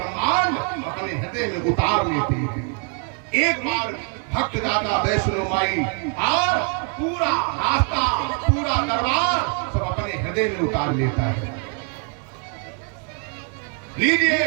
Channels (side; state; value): left; quieter; 39.8 dB